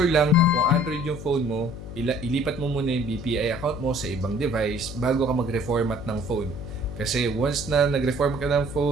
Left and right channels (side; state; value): left; noise; hum, 11 dB below the sound